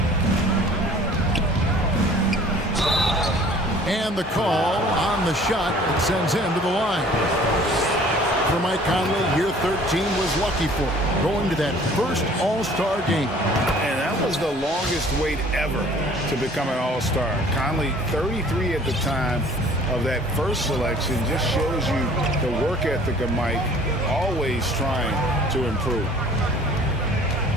And the call on the shot that sends him to the line. For Mike Conley, year 13 was lucky for him, going to that first All-Star game. And that was the longest wait ever to become an All-Star. Conley, 33 at the time of that first selection, just shows you the work ethic of Mike, always trying to improve.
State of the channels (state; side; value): normal; both; correlation 0.51